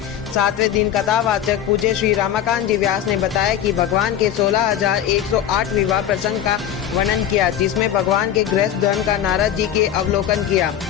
7वें दिन कथावाचक पूज्य श्री रमाकांत जी व्यास ने बताया कि भगवान के 16,108 विवाह प्रसंग का वर्णन किया, जिसमें भगवान के गृहस्थ धर्म का नारद जी के अवलोकन किया,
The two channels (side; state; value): right; quieter; 10.1 dB